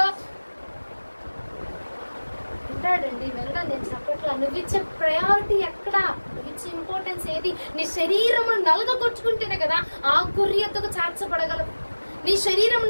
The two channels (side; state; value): both; inverted; correlation -1.00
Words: వింటాడండి. వెళ్ళడం నేను చెప్పట్లా, నువ్వు ఇచ్చే ప్రయారిటీ ఎక్కడ, నువ్వు ఇచ్చే ఇంపార్టెన్స్ ఏది? నీ శరీరమును నలగొచ్చుకుంటేనే కదా ఆ గురి ఎత్తుకు చేర్చబడగలవు. నీ